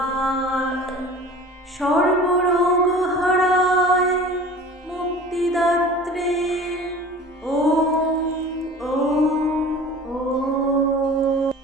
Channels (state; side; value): normal; both; correlation 0.41